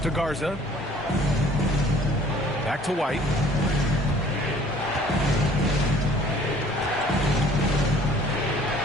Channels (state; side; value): normal; both; correlation 0.54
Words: Garza. Back to White.